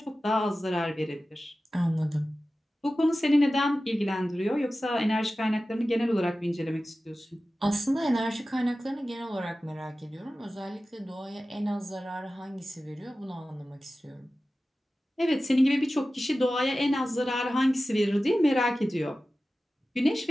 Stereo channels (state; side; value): normal; both; correlation 0.95